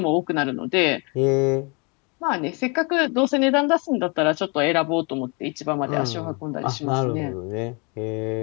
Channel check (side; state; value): right; quieter; 32.2 dB